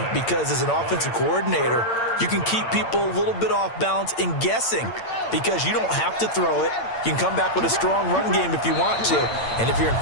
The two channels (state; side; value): late; right; 8.8 ms